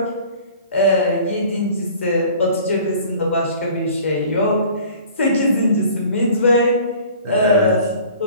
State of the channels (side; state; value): both; inverted; correlation -0.48